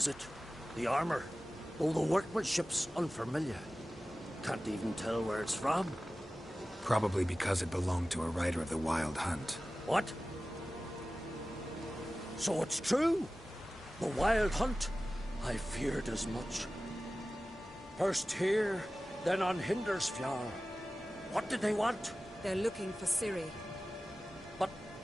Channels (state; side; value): normal; both; correlation 0.96